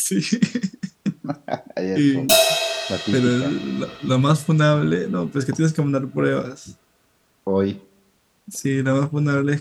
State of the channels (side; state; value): both; identical; correlation 1.00